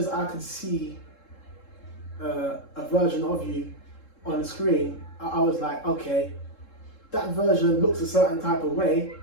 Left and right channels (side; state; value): right; late; 3.7 ms